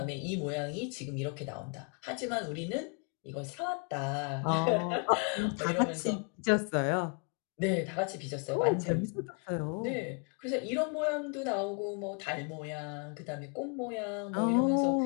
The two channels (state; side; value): quieter; right; 38.5 dB